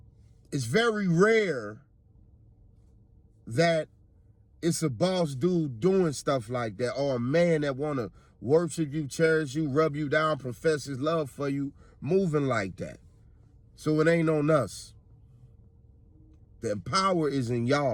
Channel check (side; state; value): both; identical; correlation 1.00